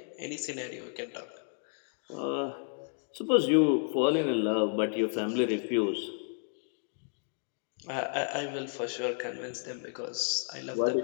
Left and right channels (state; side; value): silent; right; 56 dB below the other